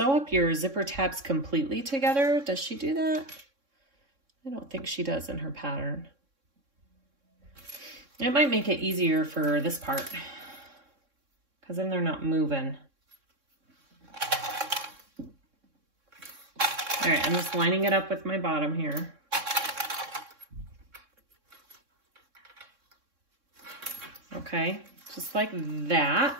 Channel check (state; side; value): late; left; 3.6 ms